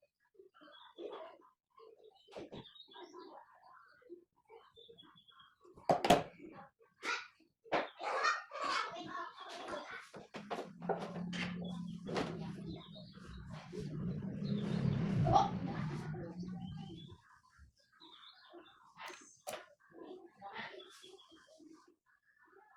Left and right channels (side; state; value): both; identical; correlation 1.00